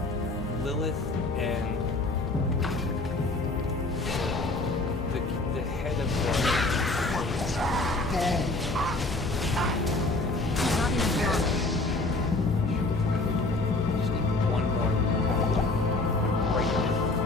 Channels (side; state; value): right; quieter; 3.0 dB